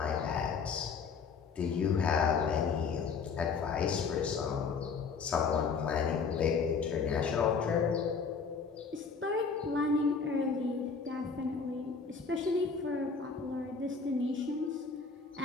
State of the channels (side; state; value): right; quieter; 5.4 dB